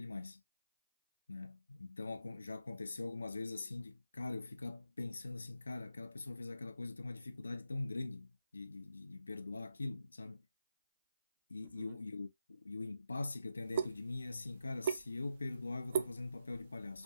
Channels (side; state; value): both; inverted; correlation -0.88